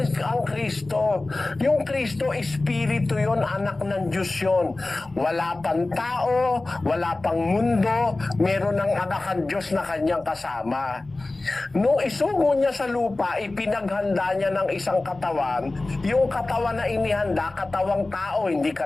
ang Kristo. Yung Kristo, Espiritu yun, anak ng Diyos yun. Wala pang tao, wala pang mundo, meron ng anak ang Diyos na kanyang kasama. Nung isugo niya sa lupa, ipinaghanda niya ng isang katawan. Yung katawan na inihanda, katawang tao, hindi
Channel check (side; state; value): right; quieter; 3.1 dB